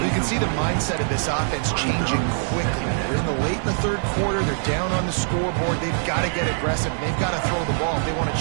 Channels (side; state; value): left; silent; 61 dB below the other